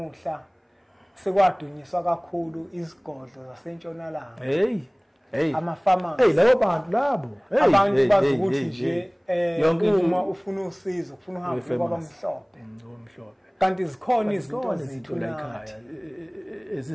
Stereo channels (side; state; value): both; identical; correlation 1.00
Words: sekwadunyiswa kakhulu izigodlo zasentshonalanga. Hey. Ama-farmers. Labo bantu labo. Abantu bazi ukuthi nje uma ufuna usizo, ufuna uhambe kwabamhlophe. Omhlophe. Kanti zikhona izinto zethu la ekhaya